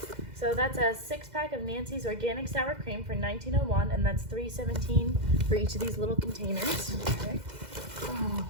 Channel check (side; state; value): left; late; 2.0 ms